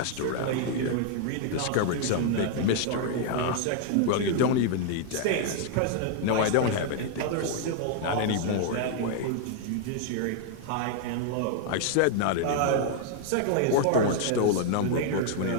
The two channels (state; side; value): different; both; correlation 0.00